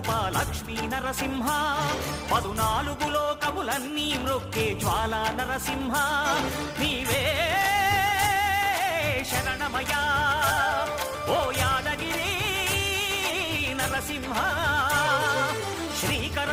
లక్ష్మీ నరసింహ 14 లోకములన్నీ మ్రొక్కే జ్వాలా నరసింహ నీవే శరణమయా ఓ యాదగిరి నరసింహ శ్రీకర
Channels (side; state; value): both; identical; correlation 1.00